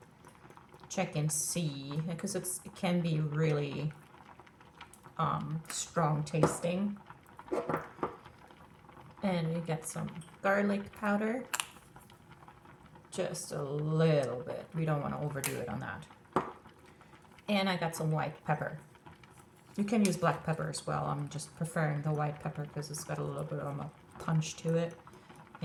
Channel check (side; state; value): both; identical; correlation 1.00